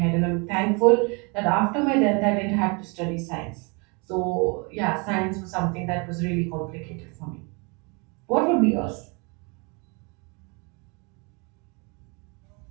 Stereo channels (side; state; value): left; quieter; 31.6 dB